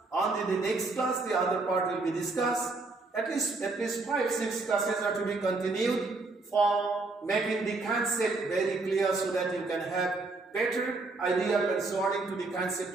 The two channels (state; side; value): quieter; left; 3.5 dB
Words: And in the next class, the other part will be discussed. At least 5-6 classes are to be continued for making the concept very clear, so that you can have better idea concerning to the concept